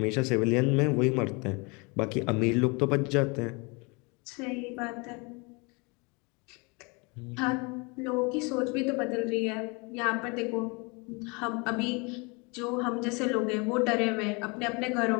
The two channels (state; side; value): quieter; right; 29.7 dB